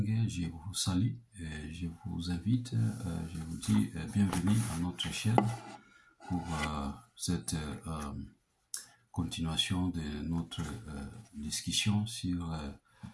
je vous salue et je vous invite, je vous dis bienvenue à notre chaîne pour cette continuation de notre discussion sur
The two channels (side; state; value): both; identical; correlation 1.00